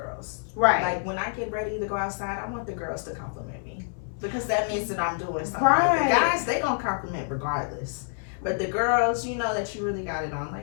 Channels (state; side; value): silent; right; 60 dB below the other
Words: Right. Like when I get ready to go outside, I want the girls to compliment me. Because that means that I'm doing something. Right. The guys, they gonna compliment regardless. But the girls, you know that you really got it on.